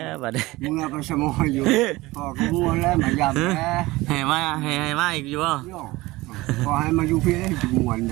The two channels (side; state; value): left; quieter; 20.1 dB